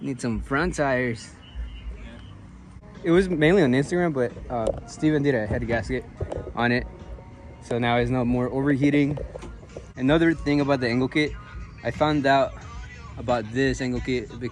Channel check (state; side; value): identical; both; correlation 1.00